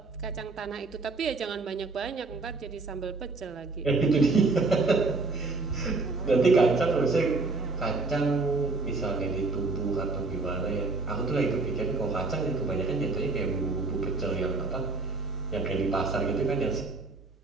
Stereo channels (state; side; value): quieter; left; 3.7 dB